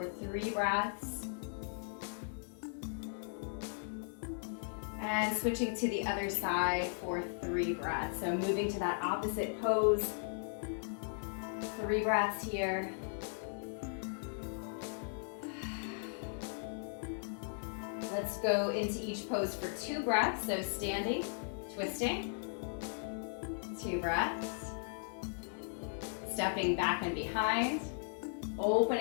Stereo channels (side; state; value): right; silent; digital silence